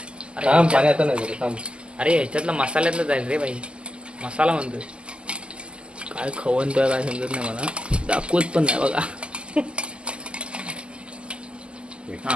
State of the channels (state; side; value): late; left; 0.051 ms